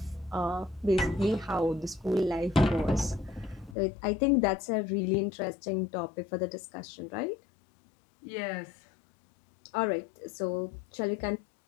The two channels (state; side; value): drops out; right; at 3.8 s